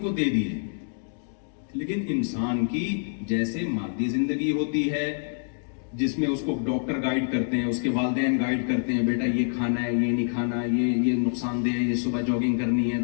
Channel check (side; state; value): right; silent; digital silence